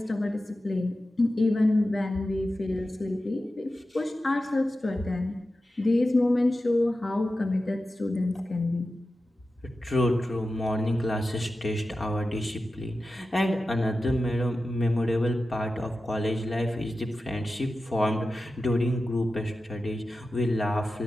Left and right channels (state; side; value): normal; both; correlation 0.93